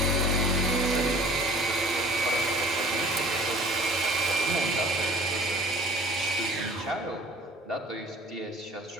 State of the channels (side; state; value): both; normal; correlation 0.48